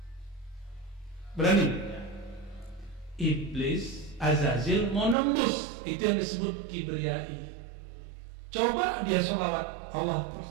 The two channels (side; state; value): left; drops out; at 5.2 s